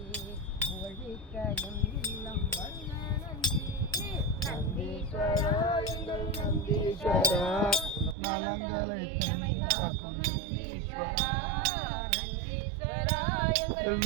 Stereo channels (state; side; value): drops out; left; at 8.2 s